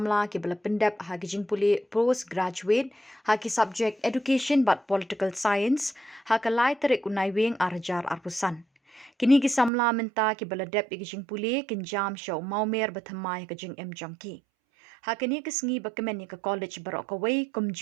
ki bala pendap ha kijing puli postgraduate ha ki subject Education but Political Science ha kalai tarik unai wing arjar arpusan. Kini ki Samla menta ki bala dep kijing puli kinjam show maumer bathamai kijing jangki. Hakini kesengi bakemen ka college barok kawai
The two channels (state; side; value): drops out; left; at 9.7 s